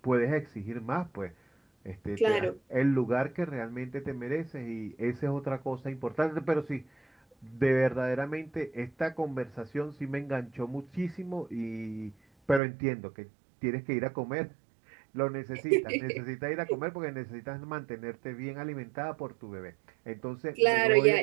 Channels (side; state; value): left; drops out; at 12.6 s